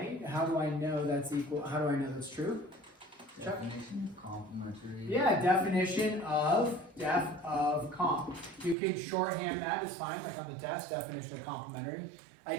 How do I know that's equal? How do I know that's true? Definition of complementary. Yeah, definition of comp. You can shorthand that, it's fine, like on the test, definition of complementary. I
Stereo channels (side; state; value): left; drops out; at 8.8 s